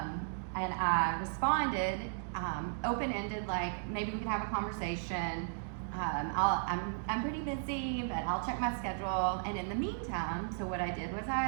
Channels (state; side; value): silent; left; digital silence